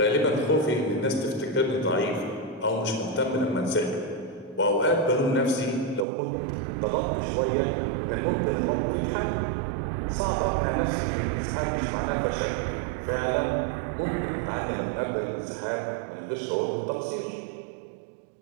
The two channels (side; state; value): left; drops out; at 6.1 s